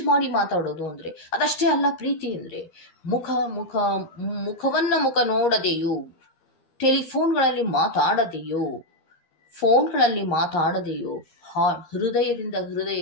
ಮಾಡಿ ಮಾತಾಡೋದು ಅಂದರೆ ಅದಷ್ಟೇ ಅಲ್ಲ ಪ್ರೀತಿ ಅಂದರೆ. ಮುಖ ನೋಡದೆಯೋ, ಟೆಲಿಫೋನ್ಗಳಲ್ಲಿ ಮಾತಾಡದೆಯೋ, ಫೋನ್ಗಳಲ್ಲಿ ಮಾತಾಡದೆಯೋ ಹೃದಯದಿಂದ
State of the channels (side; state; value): right; late; 13 ms